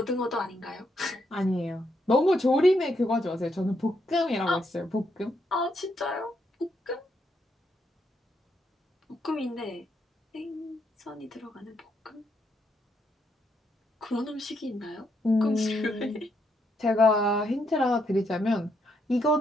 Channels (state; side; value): normal; both; correlation 0.77